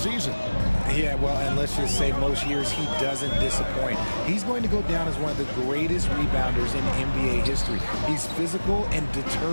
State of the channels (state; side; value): inverted; both; correlation -1.00